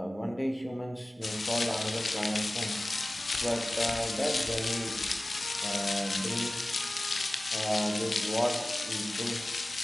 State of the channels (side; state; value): both; normal; correlation 0.97